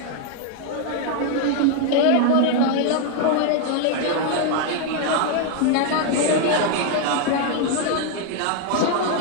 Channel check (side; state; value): both; different; correlation 0.00